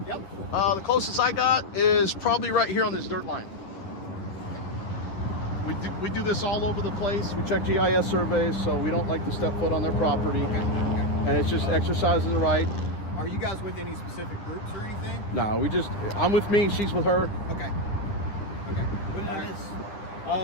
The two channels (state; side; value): late; right; 10 ms